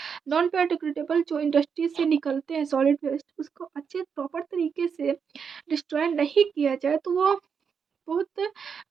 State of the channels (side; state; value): left; quieter; 6.5 dB